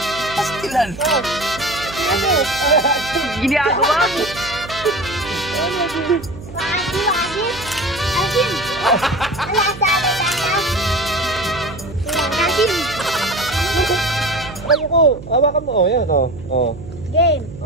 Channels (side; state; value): right; noise; hum, 14 dB below the sound